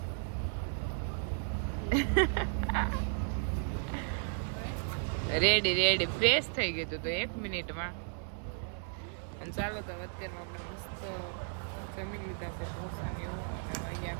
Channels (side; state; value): left; silent; 55 dB below the other